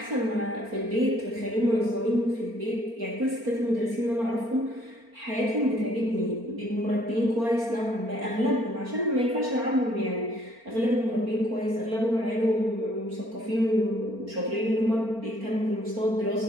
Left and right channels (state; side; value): late; left; 4.4 ms